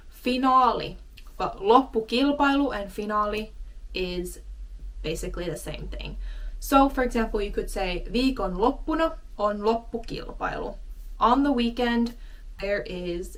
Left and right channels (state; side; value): identical; both; correlation 1.00